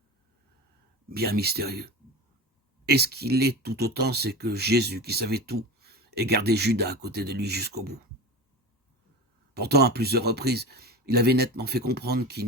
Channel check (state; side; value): normal; both; correlation 0.28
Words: bien mystérieux. Et ce qu'il est tout autant, c'est que Jésus, qui savait tout, ait gardé Judas à côté de lui jusqu'au bout. Pourtant, à plusieurs reprises, il avait nettement fait comprendre